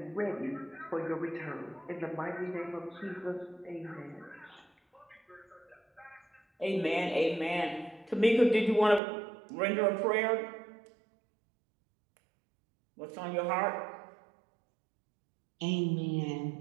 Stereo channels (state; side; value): drops out; left; at 9.0 s